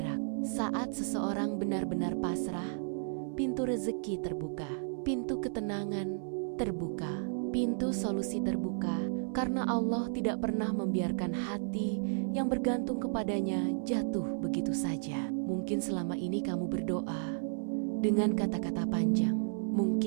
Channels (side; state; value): left; silent; 56 dB below the other